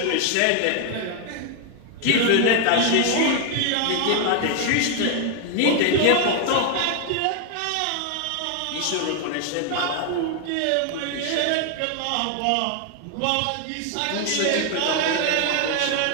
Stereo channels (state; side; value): different; both; correlation 0.01